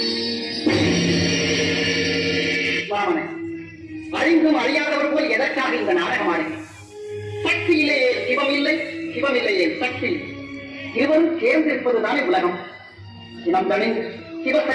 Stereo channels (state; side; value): identical; both; correlation 1.00